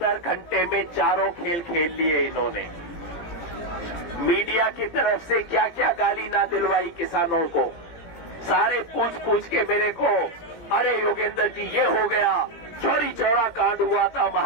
घंटे में चारों खेल खेल लिए इन्होंने। मीडिया की तरफ से क्या क्या गाली ना दिलवाई किसानों को। सारे पूछ के मेरे को, अरे योगेंद्र जी ये हो गया, चोरी चौरा कांड हुआ था,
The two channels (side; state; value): right; late; 17 ms